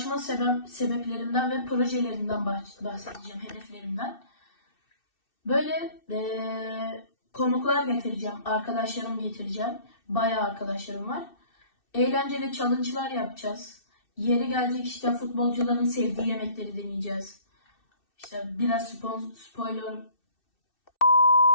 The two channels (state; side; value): late; right; 2.6 ms